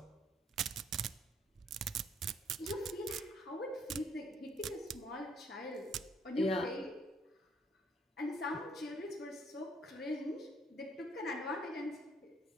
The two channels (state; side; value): normal; both; correlation 0.65